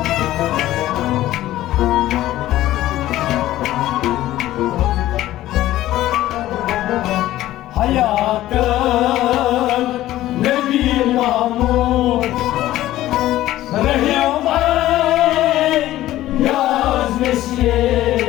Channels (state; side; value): quieter; right; 14.7 dB